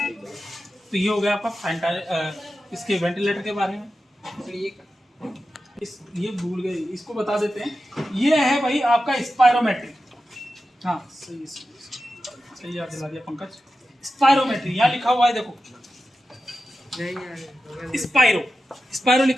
तो ये हो गया आपका इसके वेंटिलेटर के बारे में। ये भूल गए, इसको बता देते हैं। ये है भाई आपका स्पायरोमेट्री, हाँ सही याद दिला दिया पंकज। स्पायरोमेट्री यहाँ लिखा हुआ है, देखो स्पायरो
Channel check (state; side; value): normal; both; correlation 0.92